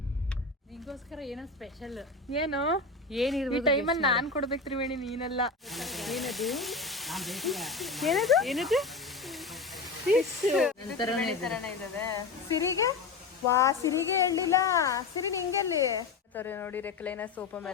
ನಿಂಗೋಸ್ಕರ ಏನೋ ಸ್ಪೆಷಲ್. ಏನು ಏನಿರ್ಬೋದು ಈ ಟೈಮಲ್ಲಿ ನಾನ್ ಕೊಡ್ಬೇಕು ತ್ರಿವೇಣಿ, ನೀನೆಲ್ಲ. ಏನದು ಏನದು ಏನದು ಸಿರಿಗೆ ವಾ, ಸಿರಿಗೆ ಹೇಳಿಲ್ಲ. ಸಿರಿ ನಿಂಗೆಲ್ಲಿ ನೋಡಿ ರೆಕ್ಲೈನ ಸೋಪ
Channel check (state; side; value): quieter; right; 4.1 dB